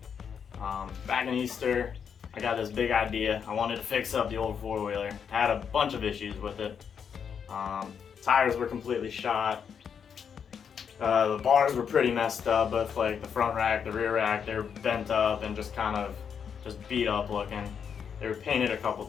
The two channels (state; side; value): quieter; right; 7.2 dB